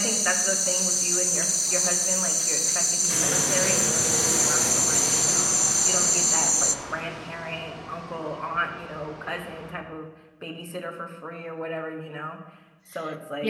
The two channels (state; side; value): identical; both; correlation 1.00